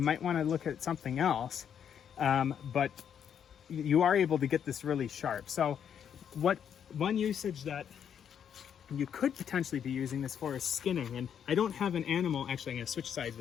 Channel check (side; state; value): right; quieter; 8.4 dB